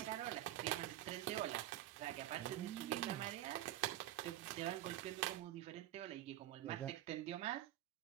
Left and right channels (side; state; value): left; quieter; 13.7 dB